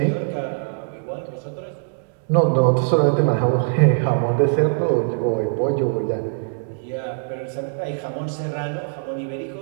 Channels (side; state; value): left; silent; digital silence